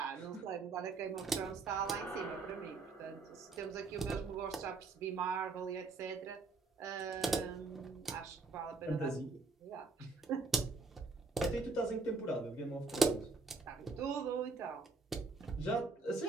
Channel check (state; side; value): quieter; left; 4.0 dB